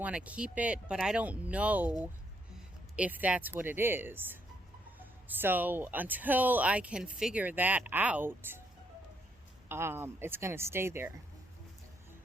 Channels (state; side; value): normal; both; correlation 0.74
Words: to keep it, but I don't know if that's what it is. So until I can figure that out, it's going to stay there.